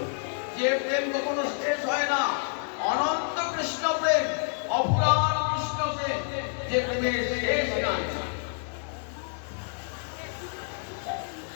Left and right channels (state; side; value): silent; right; 59 dB below the other